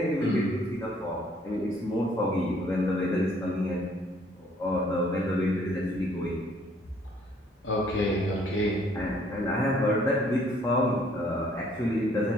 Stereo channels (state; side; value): normal; both; correlation 0.62